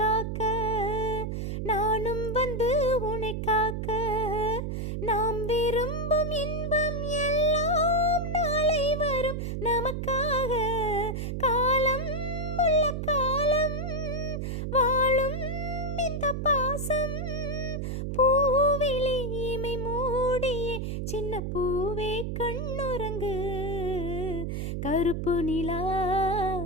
நானும் வந்து உன்னை காக்க, நாம் விரும்பும் இன்பம் எல்லாம் நாளை வரும் நமக்காக. காலம் உள்ள காலம் வாழும் இந்த பாசம், பூவிழி இமை மூடியே சின்ன பூவே கண்ணுறங்கு. கருப்பு நிலா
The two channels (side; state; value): right; noise; hum, 3 dB below the sound